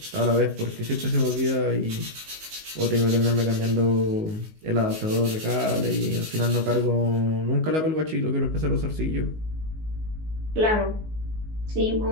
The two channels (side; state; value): left; late; 19 ms